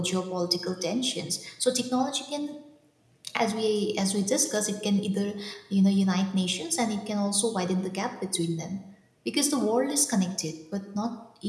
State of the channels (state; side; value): identical; both; correlation 1.00